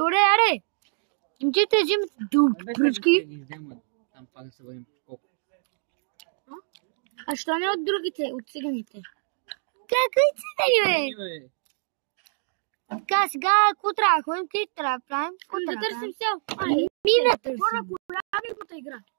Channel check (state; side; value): silent; left; digital silence